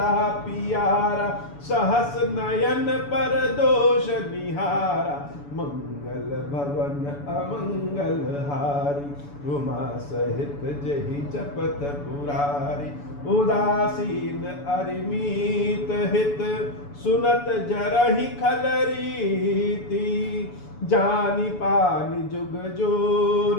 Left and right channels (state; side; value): late; right; 7.0 ms